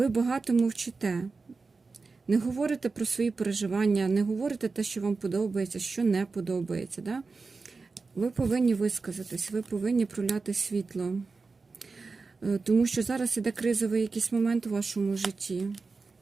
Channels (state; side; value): quieter; left; 4.2 dB